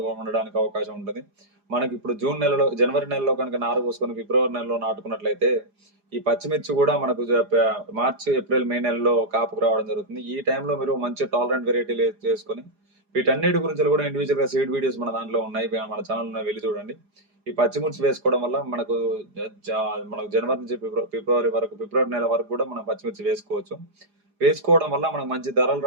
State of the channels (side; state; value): left; late; 4.9 ms